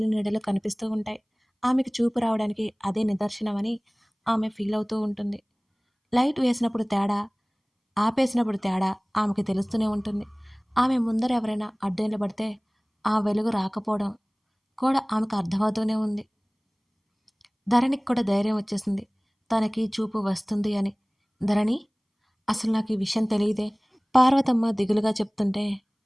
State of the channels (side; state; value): both; identical; correlation 1.00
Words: నీడలు కనిపిస్తూ ఉంటాయి. ఆమెకు చూపు రావడానికి అదే నిదర్శనమని ఆమె ఫీల్ అవుతూ ఉంటుంది. లైట్ వేసినప్పుడు తేడా, ఆపేసినప్పుడు తేడా ఆమెకి తెలుస్తూనే ఉంటుంది. ఆమె ముందర ఎవరైనా అడ్డు నిలబడితే ఆ వెలుగు రాకపోవడం కూడా ఆమెకు అర్థమవుతూనే ఉంది. ధరణికి కూడా ధైర్యం వచ్చేసింది. తనకి చూపు వస్తుంది అని. ధరణి, అసలు నాకు ఈ విషయం తెలియదే. పార్వతమ్మ దిగులుగా చెప్తుంటే